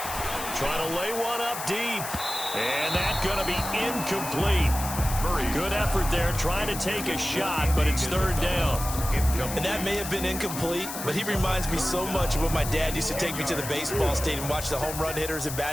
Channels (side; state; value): left; noise; hiss, 7 dB below the sound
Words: Trying to lay one up deep. And that's going to be incomplete. Good effort there, trying to take a shot, but it's third down. And that may have been incomplete, but he reminds me so much of when my dad used to take me to the baseball stadium and watch the home run hitters in